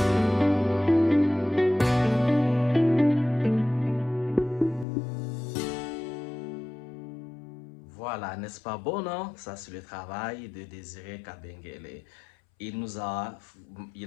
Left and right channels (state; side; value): drops out; right; at 4.9 s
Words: Voilà, n'est-ce pas bon, non? Ça, c'est le travail de Désiré Kabengele.